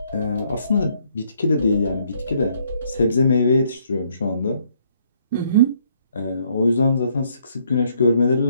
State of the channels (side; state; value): both; inverted; correlation -0.68